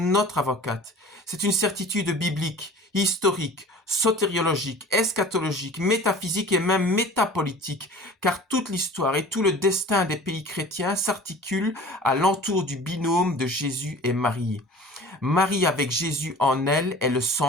avocate. C'est une certitude biblique, historique, sotériologique, eschatologique, métaphysique et même métapolitique, car toute l'histoire et tout le destin des pays chrétiens s'articulent à l'entour du binôme de Jésus et Marie. Marie avec Jésus en elle est le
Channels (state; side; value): normal; both; correlation 0.43